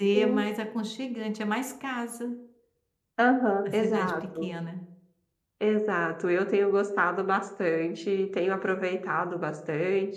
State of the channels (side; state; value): both; identical; correlation 1.00